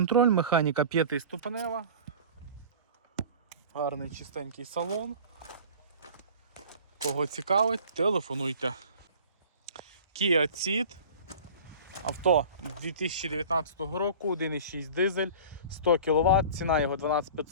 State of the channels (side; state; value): both; inverted; correlation -0.40